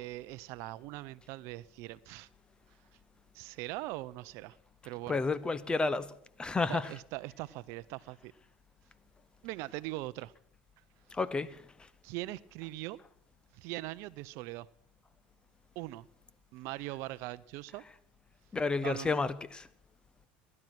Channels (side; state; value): both; normal; correlation 0.64